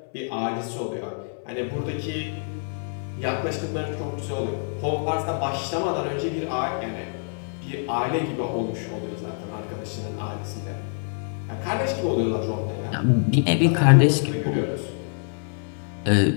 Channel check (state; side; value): silent; right; 61 dB below the other